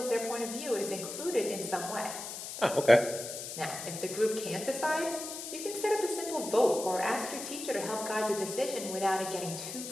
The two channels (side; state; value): left; noise; hiss, 8 dB below the sound